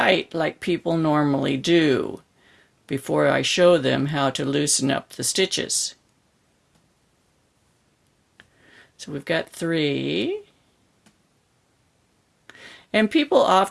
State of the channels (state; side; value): identical; both; correlation 1.00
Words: like people normally do before I show them how to loosen up the stitches. So we've got 3. And people